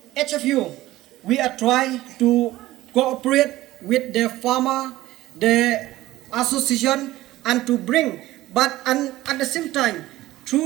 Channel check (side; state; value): left; quieter; 16.5 dB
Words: HFU, we are trying to cooperate with the farmer, the association, and to bring, and at the same time,